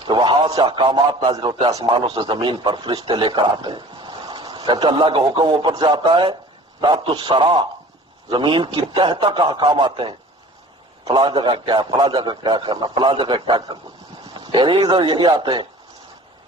کہ وہاں سے احکامات نازل ہوتے ہیں آسمانوں سے زمین پر، فرشتے لے کر آتے ہیں. کہتے اللہ کا حکم اوپر سے آتا ہے، تحت الثری، زمین کی تہ تک احکام آتے ہیں. فلاں جگہ کیا ہے، فلاں جگہ کیا کرنا، فلاں جگہ کیا کرنا. یہی آتے ہیں.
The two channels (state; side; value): normal; both; correlation 0.45